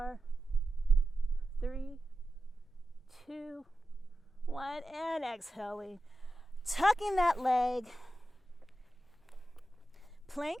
3, 2, 1, and exhaling. Tucking that leg.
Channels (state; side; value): normal; both; correlation 0.92